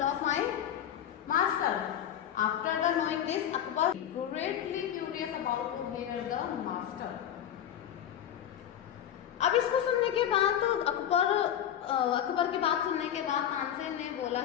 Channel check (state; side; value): quieter; right; 10.2 dB